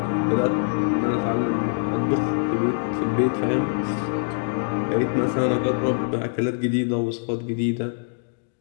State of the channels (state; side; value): silent; right; digital silence